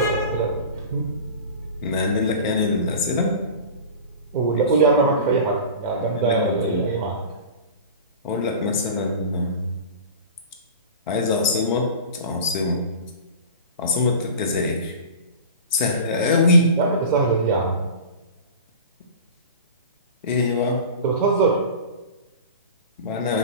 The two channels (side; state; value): both; inverted; correlation -0.35